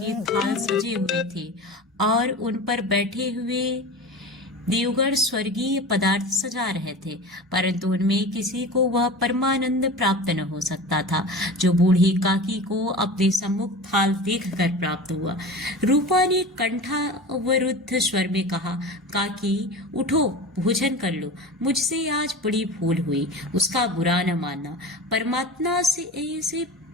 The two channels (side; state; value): both; normal; correlation 0.32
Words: थाल सजे हुए थे और उन पर बैठे हुए देवगण स्वर्गीय पदार्थ सजा रहे थे, परंतु उनमें किसी को वह परमानंद प्राप्त न हो सकता था जो बूढ़ी काकी को अपने सम्मुख थाल देखकर प्राप्त हुआ। रूपा ने कंठावरुद्ध स्वर में कहा, काकी उठो, भोजन कर लो, मुझसे आज बड़ी भूल हुई, उसका बुरा न मानना। परमात्मा से